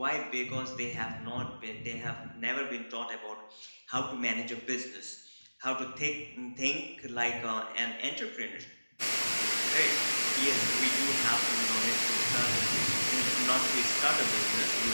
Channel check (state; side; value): inverted; both; correlation -1.00